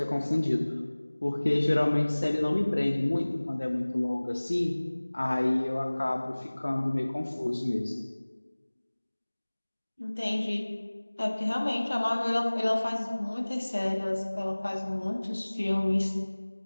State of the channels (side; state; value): both; inverted; correlation -1.00